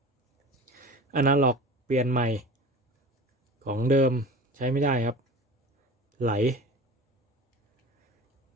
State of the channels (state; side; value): normal; both; correlation 0.36